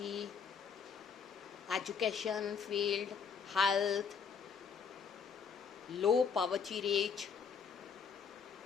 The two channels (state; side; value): quieter; right; 6.1 dB